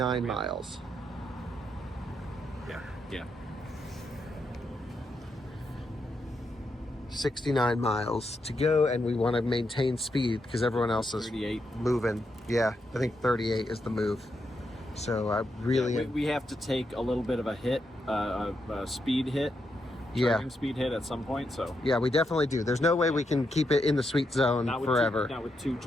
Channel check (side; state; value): both; normal; correlation 0.82